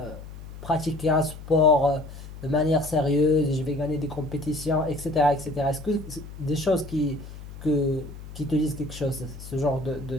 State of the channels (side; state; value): left; noise; hum, 13 dB below the sound